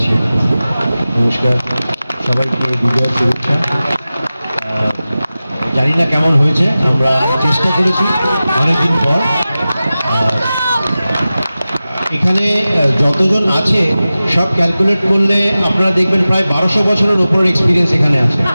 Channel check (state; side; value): inverted; both; correlation -0.96